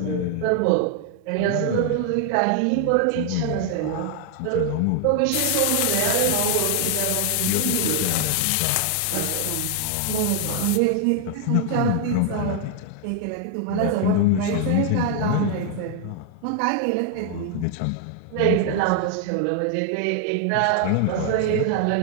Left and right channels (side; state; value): both; different; correlation 0.00